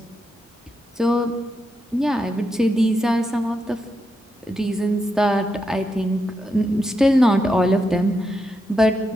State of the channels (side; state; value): both; normal; correlation 0.84